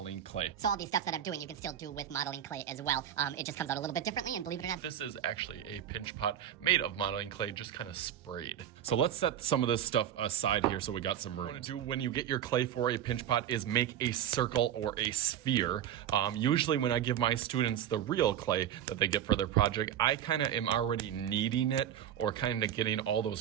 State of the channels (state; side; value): quieter; left; 10.4 dB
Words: clay. So all these steps that I'm doing, you can still do with modeling clay as well. It just comes out a little bit differently, and believe it or not, this is actually a pinch pot made of modeling clay, just kind of sprayed. So let's set some of this stuff aside here so we got some room. What you want to do when you get your clay for a pinch pot is make a circle or a sphere. Usually when I give my students the real clay that they get for their project, I kind of am already kneading it or kind of getting all